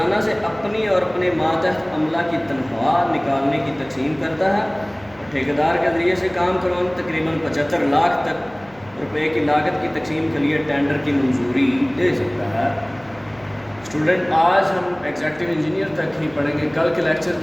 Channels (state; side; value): noise; left; hum, 26 dB below the sound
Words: سے اپنی اور اپنے ماتحت عملہ کی تنخواہ نکالنے کی تقسیم کرتا ہے، ٹھیکیدار کے ذریعے سے کام کروانا تقریباً 75 لاکھ تک روپے کی لاگت کی تقسیم کے لیے ٹینڈر کی منظوری دے سکتا ہے۔ اسٹوڈنٹ، آج ہم ایگزیکٹو انجینئر تک ہی پڑھیں گے۔ کل کے لیکچر